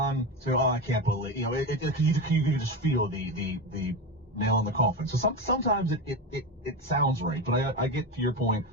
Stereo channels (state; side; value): normal; both; correlation 0.19